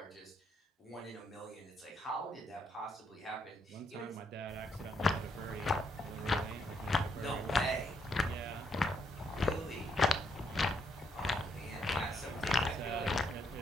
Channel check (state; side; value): normal; both; correlation 0.74